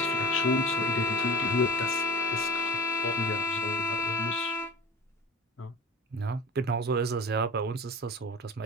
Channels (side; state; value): both; normal; correlation 0.32